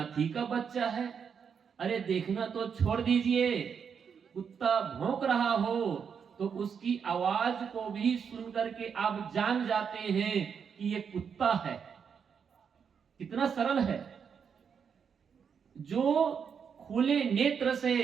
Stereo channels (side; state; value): left; quieter; 6.8 dB